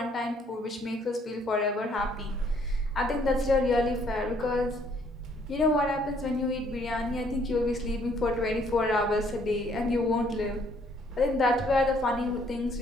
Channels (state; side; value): normal; both; correlation 0.65